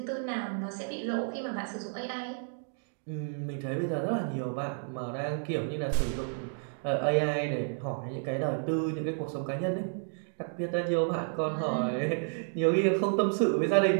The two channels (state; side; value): silent; left; 57 dB below the other